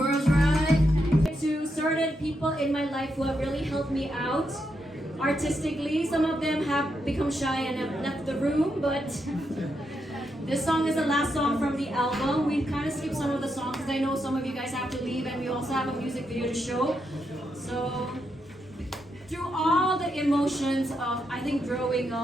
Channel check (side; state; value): both; normal; correlation 0.82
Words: right. To certain people in my life who have really helped me out artistically. Some of them have become shy and have left the room, but this song is the last song from the album. We kind of skipped some of the songs because I know some of you guys have to leave and we also have a music video to show. So through all the emotions of I think growing